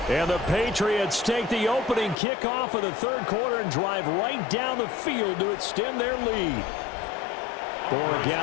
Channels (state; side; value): drops out; right; at 2.1 s